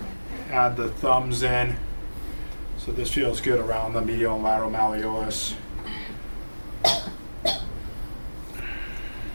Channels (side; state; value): both; inverted; correlation -1.00